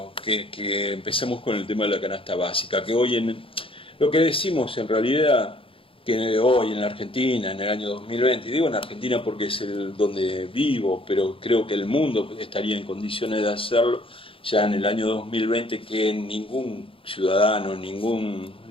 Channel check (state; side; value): late; right; 0.26 ms